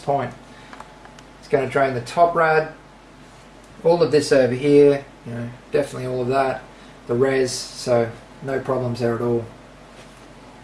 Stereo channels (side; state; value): both; identical; correlation 1.00